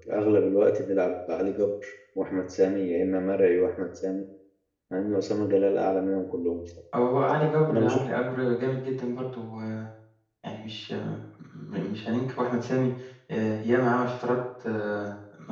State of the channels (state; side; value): identical; both; correlation 1.00